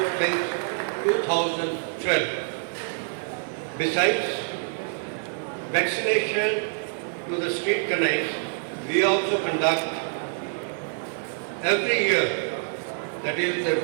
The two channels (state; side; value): silent; left; digital silence